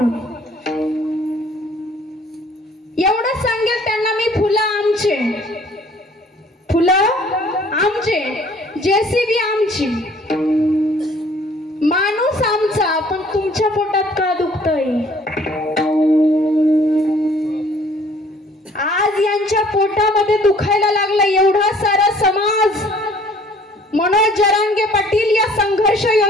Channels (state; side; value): normal; both; correlation 0.56